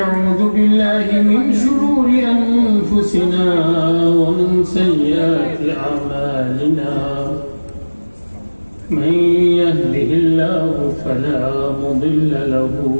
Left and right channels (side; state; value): both; inverted; correlation -1.00